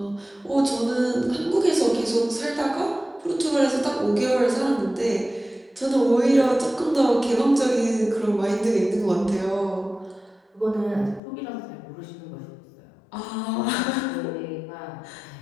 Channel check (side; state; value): right; drops out; at 11.2 s